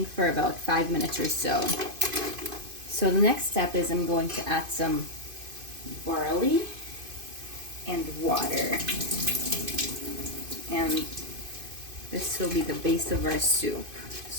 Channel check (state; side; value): late; left; 2.5 ms